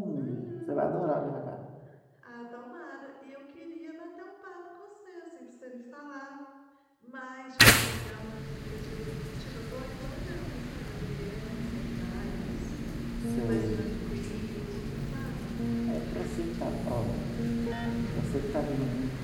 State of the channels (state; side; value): identical; both; correlation 1.00